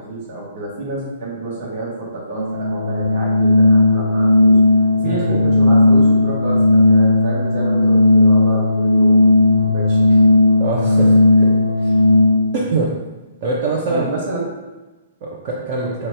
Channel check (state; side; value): inverted; both; correlation -0.83